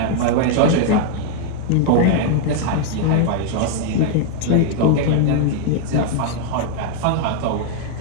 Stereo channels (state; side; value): different; both; correlation 0.00